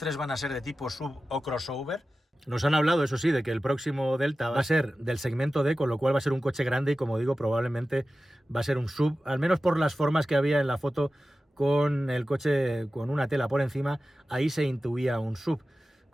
van a ser de tipo sub o crossover. Nos han hablado, eso sí, de que el próximo Delta va a ser del segmento D, con lo cual va a ser un coche grande y, como digo, probablemente va a ser un sub, al menos por las formas que había en la foto con el coche con una tela por encima. Ahí se intuía un sub,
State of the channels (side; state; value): both; normal; correlation 0.95